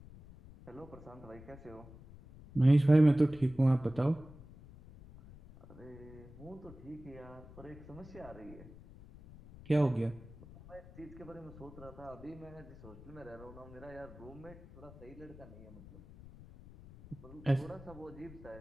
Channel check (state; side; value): noise; left; rumble, 18 dB below the sound